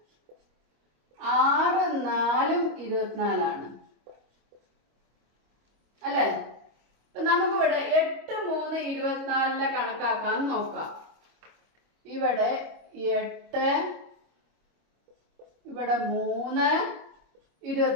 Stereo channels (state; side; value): late; left; 26 ms